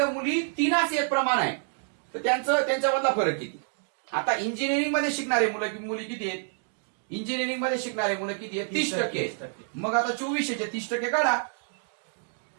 मुली 3 एक प्रमाण आहे तर त्यांच्यामधला फरक किती? आता इंजिनिअरिंग मध्ये शिकणारे मुली किती आहेत? इंजिनिअरिंग मध्ये शिकणारे मुलं किती आहेत? 30%. मग आता 2400 चे 30% काढा.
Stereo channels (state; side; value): silent; left; digital silence